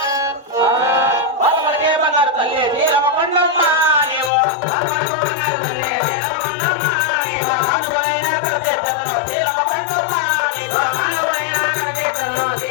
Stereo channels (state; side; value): drops out; right; at 4.3 s